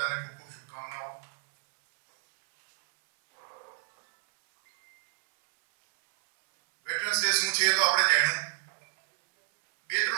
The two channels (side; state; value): left; silent; 59 dB below the other